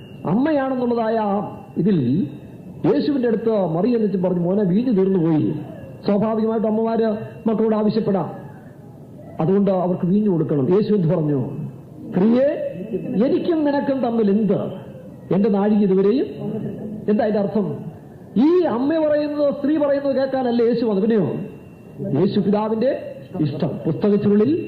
അമ്മയാണെന്നുള്ളതായ ഇതിൽ യേശുവിന്റെ അടുത്ത് മറിയെന്നിച്ച് പറഞ്ഞു, മോനെ വീഞ്ഞു തീർന്നുപോയി. സ്വാഭാവികമായിട്ട് അമ്മമാര് മക്കളോട് ആവശ്യപ്പെടാം, അതുകൊണ്ട് അവർക്ക് വീഞ്ഞു കൊടുക്കണം. യേശു എന്ത് പറഞ്ഞു? സ്ത്രീയെ, എനിക്കും നിനക്കും തമ്മിൽ എന്ത്? എന്റെ നാഴിക ഇതുവരെയും. എന്താ അതിന്റെ അർത്ഥം? ഈ അമ്മ പറയുന്നത് സ്ത്രീ പറയുന്നത് കേൾക്കാനല്ല യേശു വന്നു. പിന്നെയോ യേശു പിതാവിന്റെ ഇഷ്ടം പുസ്തകത്തിനുള്ളിൽ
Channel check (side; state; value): both; identical; correlation 1.00